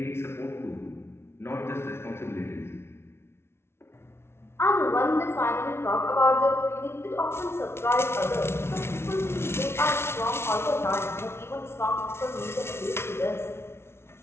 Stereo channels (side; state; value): right; late; 0.12 ms